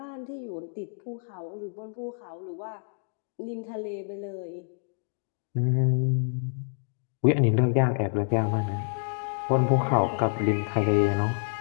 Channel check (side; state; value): right; silent; digital silence